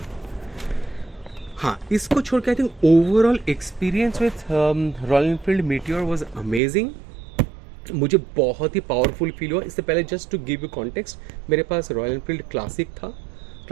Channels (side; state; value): left; drops out; at 6.6 s